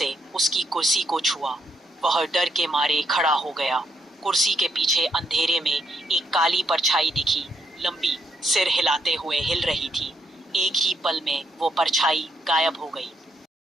उसकी कुर्सी को छुआ। वह डर के मारे खड़ा हो गया। कुर्सी के पीछे अंधेरे में एक काली परछाई दिखी, लंबी, सिर हिलाते हुए हिल रही थी। एक ही पल में वो परछाई गायब हो गई।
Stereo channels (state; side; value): normal; both; correlation 0.77